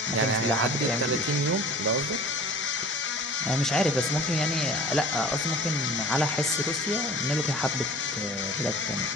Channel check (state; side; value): normal; both; correlation 0.44